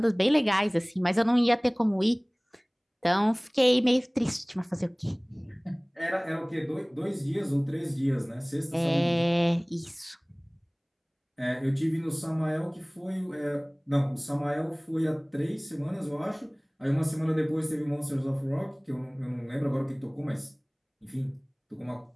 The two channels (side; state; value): both; identical; correlation 1.00